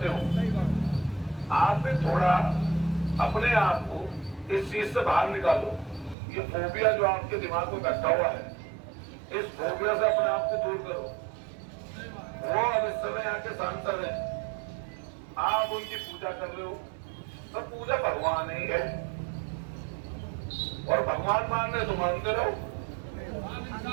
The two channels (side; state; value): left; drops out; at 6.2 s